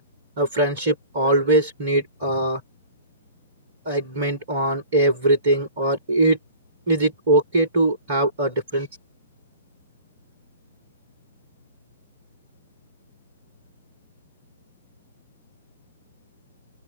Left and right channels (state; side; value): inverted; both; correlation -0.42